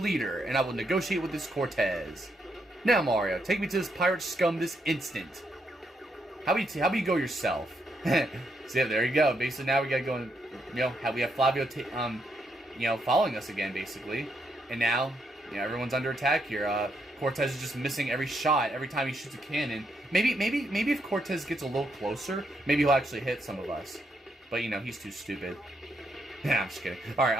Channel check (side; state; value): both; normal; correlation 0.78